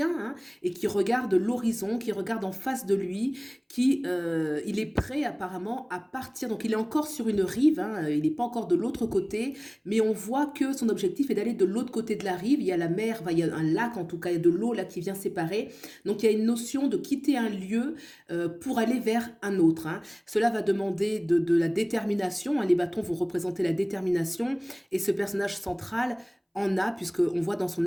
hein, et qui regarde l'horizon, qui regarde en face de lui, il est prêt apparemment à partir. Donc il est encore sur une rive, hein, il n'est pas encore de l'autre côté, mais on voit que son objectif est d'aller de l'autre côté de la rive. Il y a la mer, enfin, il y a un lac en tout cas, il y a de l'eau là qui vient séparer. Donc il y a une notion de quitter un lieu pour aller vers un autre, hein. Cela va demander de la détermination, hein. Les bâtons vont représenter la détermination et ce personnage central en a, puisqu'on voit dans son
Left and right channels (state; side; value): identical; both; correlation 1.00